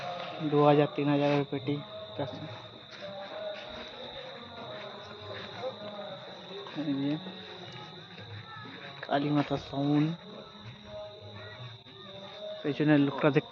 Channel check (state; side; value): identical; both; correlation 1.00